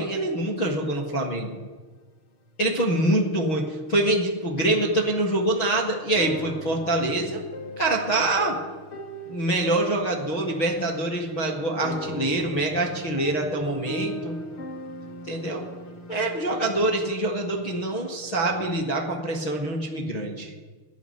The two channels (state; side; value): late; right; 6.5 ms